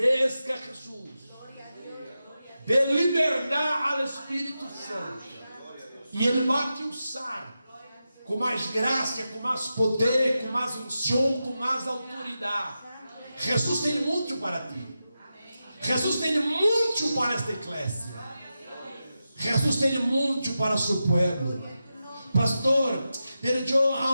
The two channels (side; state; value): both; inverted; correlation -0.91